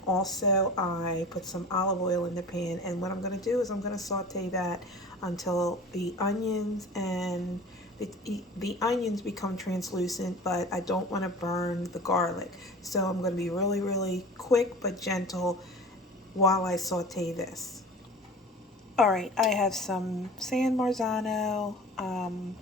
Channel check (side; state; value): both; normal; correlation 0.39